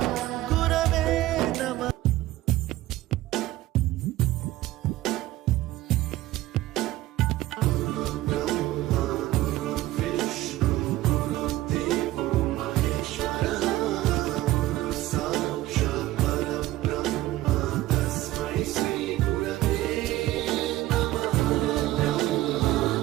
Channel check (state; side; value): quieter; left; 16.1 dB